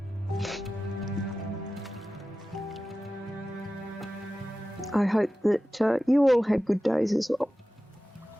I hope that you all had good days as well.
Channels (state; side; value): normal; both; correlation 0.95